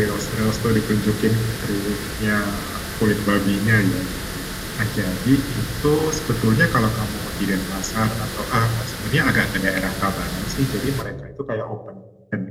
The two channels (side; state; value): both; identical; correlation 1.00